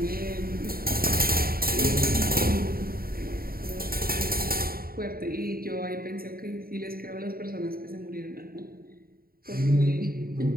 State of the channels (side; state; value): left; late; 0.43 ms